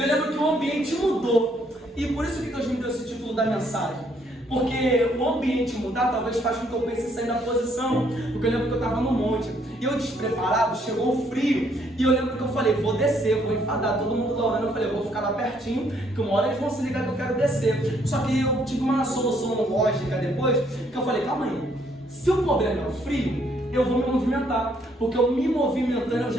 lembro que o ambiente mudou, e por isso que Deus me deu esse título da mensagem. Porque o ambiente mudar talvez faça com que eu pense em sair da posição. Porque eu lembro que eu estava no monte e eu despreparado, chegou o frio. E eu lembro que eu falei, vou descer, vou enfadar todo mundo lá orando. Eu falei, eu vou ficar lá pertinho, que uma hora eles vão se ligar que eu quero descer. Só que eu tive uma solução lógica depois, que eu falei, calma aí, se o problema é o frio, eu vou me movimentar, porque eu me movimentando eu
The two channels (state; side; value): normal; both; correlation 0.68